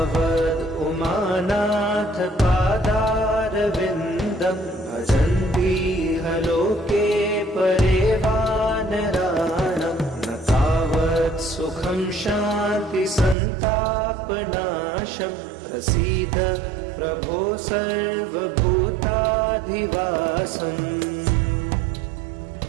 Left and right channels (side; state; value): left; drops out; at 13.4 s